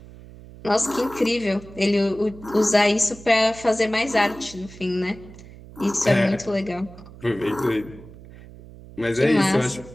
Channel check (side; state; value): right; noise; hum, 18 dB below the sound